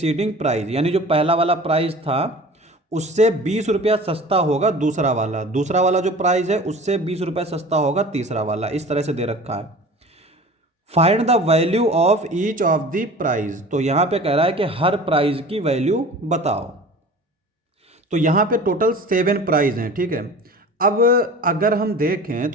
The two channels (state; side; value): normal; both; correlation 0.40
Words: prize, यानी जो पहला वाला प्राइज था उससे 20 रुपया सस्ता होगा दूसरा वाला जो प्राइस है उससे 20 रुपया सस्ता होगा तीसरा वाला। इस तरह से दे रखा है। Find the value of each of the prize. तो यहां पे कह रहा है कि हर प्राइज की वैल्यू बताओ। तो यहां पे टोटल 7 प्राइज हैं, ठीक है। अब अगर हम देखें